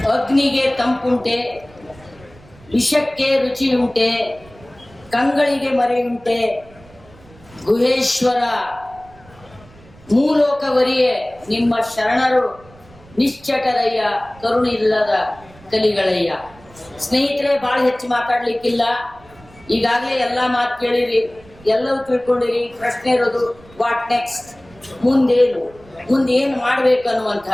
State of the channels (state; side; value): noise; right; rumble, 25 dB below the sound